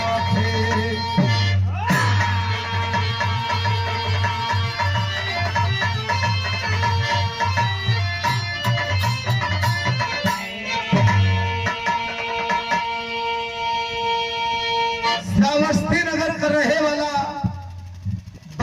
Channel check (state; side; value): identical; both; correlation 1.00